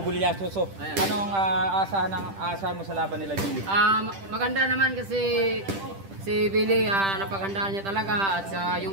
So anong asahan mo sa laban nila, Billy? Maganda naman kasi si Billy, napagandaan niya talaga at yung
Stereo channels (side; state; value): left; late; 10 ms